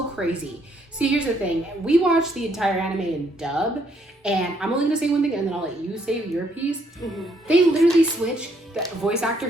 crazy. See, here's the thing. We watched the entire anime in dub, and I'm only gonna say one thing and then I'll let you say your piece. They literally switched the voice actor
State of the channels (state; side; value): normal; both; correlation 0.70